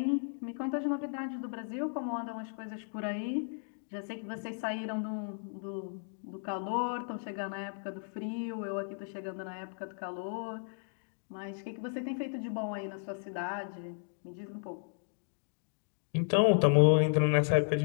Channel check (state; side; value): silent; right; digital silence